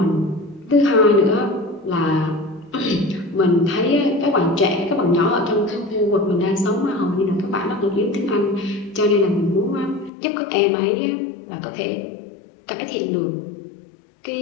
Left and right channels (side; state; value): right; drops out; at 10.1 s